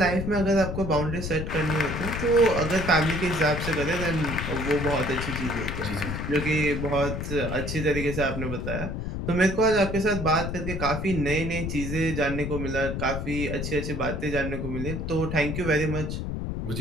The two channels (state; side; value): noise; left; rumble, 4 dB below the sound